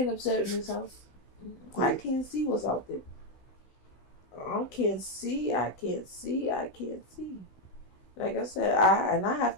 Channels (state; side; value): late; right; 16 ms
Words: upset in this house. I can't see what's out there. I can't see. Like I said, I have